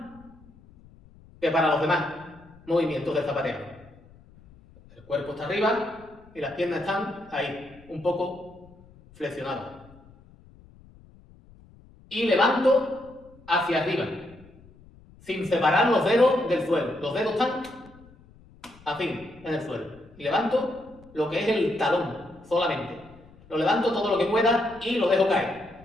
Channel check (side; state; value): left; noise; rumble, 25 dB below the sound